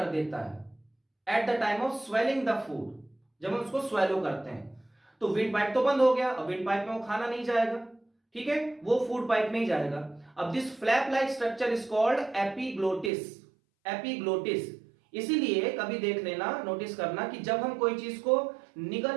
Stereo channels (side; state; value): left; drops out; at 13.1 s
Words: देता है at the time of swelling the food. जब हम उसको स्वेलो करते हैं तो विंड पाइप तो बंद हो गया, अब विंड पाइप में वो खाना नहीं जाएगा। ठीक है, वो फूड पाइप में ही जाएगा। अब this flap like structure is called epiglottis. Epiglottis, इसीलिए कभी देख लेना, नोटिस करना कि जब हम कोई चीज को